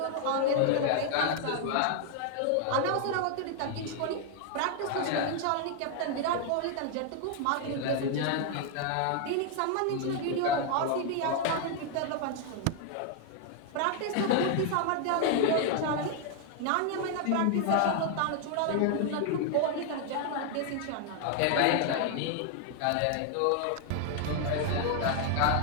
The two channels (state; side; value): different; both; correlation 0.00